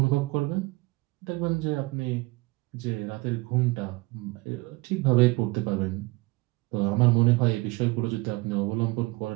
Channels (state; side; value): quieter; left; 23.6 dB